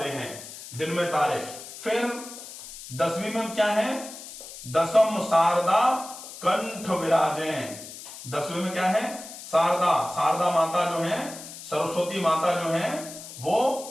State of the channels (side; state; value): left; noise; hiss, 13 dB below the sound